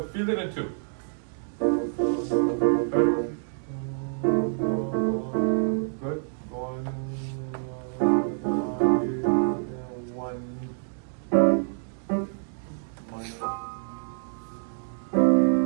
feel it in 2. Good. 1.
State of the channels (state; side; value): silent; left; digital silence